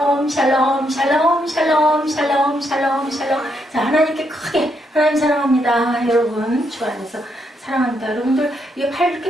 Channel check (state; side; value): normal; both; correlation 0.77